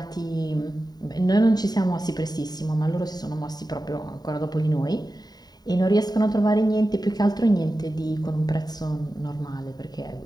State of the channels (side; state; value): right; late; 0.19 ms